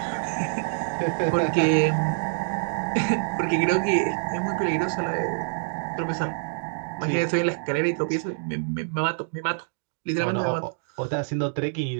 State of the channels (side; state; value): left; silent; digital silence